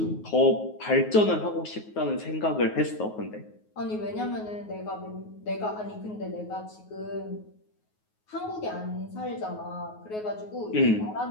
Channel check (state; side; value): late; right; 9.4 ms